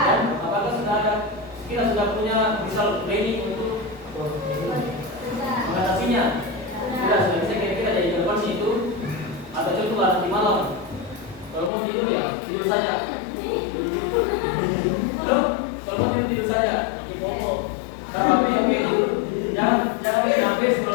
apakah kita sudah punya misal planning untuk mengatasinya. Sudah bisa kira-kira jadi jawabannya itu. Atau contohlah nanti malam kalau mau tidur ya tidur saja. Kalau mau tidur saja. Tapi tidur jangan sampai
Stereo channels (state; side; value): drops out; right; at 11.7 s